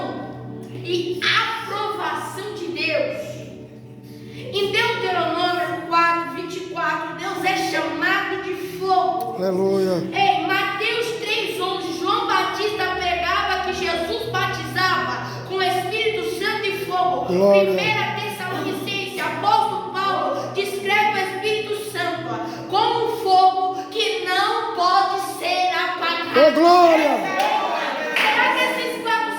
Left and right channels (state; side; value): identical; both; correlation 1.00